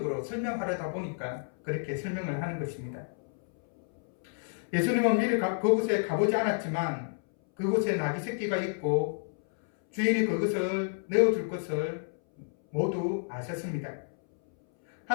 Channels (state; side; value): silent; right; 58 dB below the other